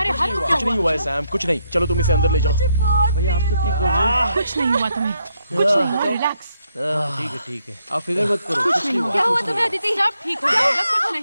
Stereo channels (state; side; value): inverted; both; correlation -0.76